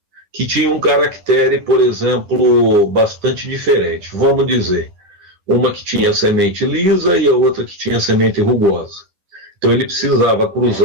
que tinham um caractere, por exemplo, bastante diferente. Vamos dizer, uma que tinha semente lisa e a outra que tinha semente rugosa. Então ele precisava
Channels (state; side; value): late; left; 10 ms